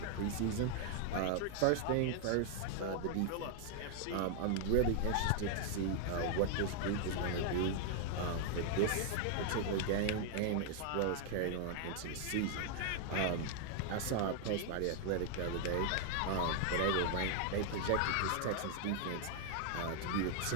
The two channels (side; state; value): both; different; correlation 0.00